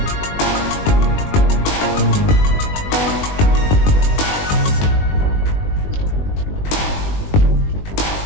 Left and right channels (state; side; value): late; right; 20 ms